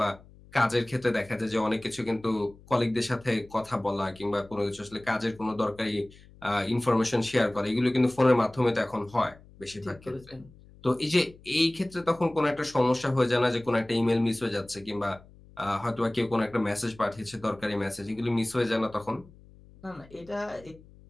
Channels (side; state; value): left; noise; hum, 23 dB below the sound